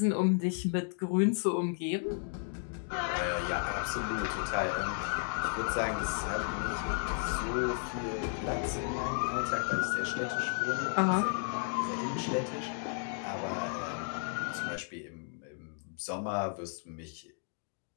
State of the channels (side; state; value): right; silent; 55 dB below the other